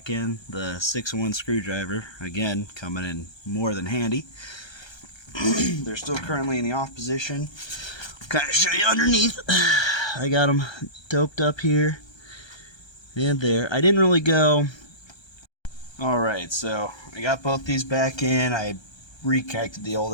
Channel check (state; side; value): late; right; 1.3 ms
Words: in. The 6-in-1 screwdriver, again, coming in more than handy. They're still currently in the off position. I'll kind of show you underneath. I got them doped up here and there. I didn't really go... Alright, so I got both these back in. I reconnected the old